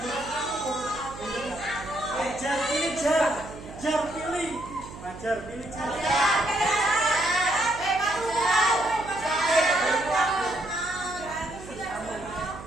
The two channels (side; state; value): right; noise; hum, 15 dB below the sound